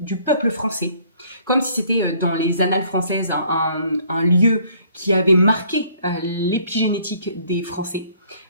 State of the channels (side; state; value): both; inverted; correlation -0.60